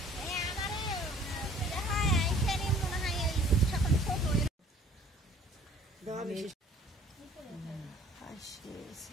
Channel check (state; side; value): normal; both; correlation 0.54